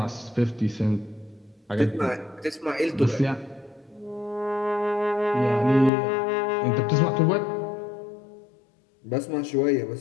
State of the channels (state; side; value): drops out; right; at 5.9 s